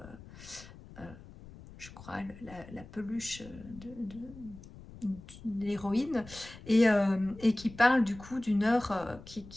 je crois, la peluche de l'héroïne, et qui parle du coup d'une heure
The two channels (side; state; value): left; noise; rumble, 18 dB below the sound